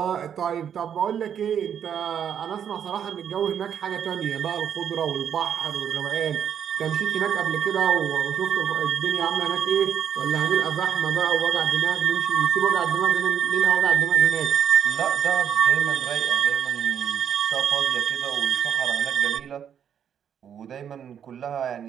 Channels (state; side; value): quieter; left; 8.6 dB